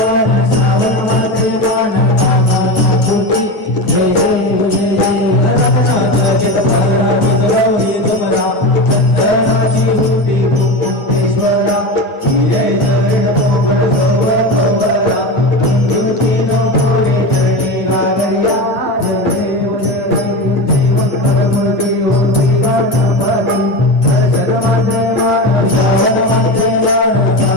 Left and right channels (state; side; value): late; right; 9.1 ms